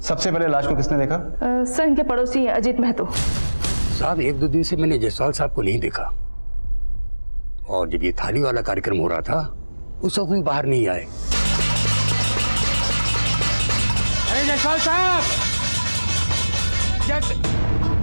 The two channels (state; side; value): inverted; both; correlation -1.00